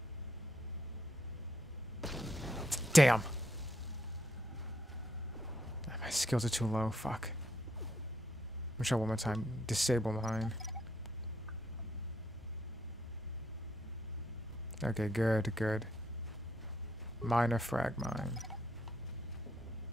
Damn. My skills are too low. Fuck. Let me try one more time. Disable mine. Okay, good, good. Minor frag mine.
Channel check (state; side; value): normal; both; correlation 0.75